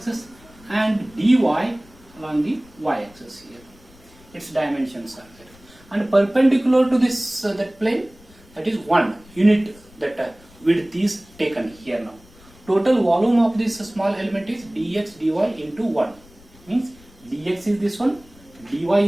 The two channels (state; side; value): noise; left; rumble, 25 dB below the sound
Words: and dy along the y-axis here. Its dimensions are there, and perpendicular to this that plane, that is 1 unit, that width is taken here now. Total volume of this small element is dx dy into 1, means dx is this one, dy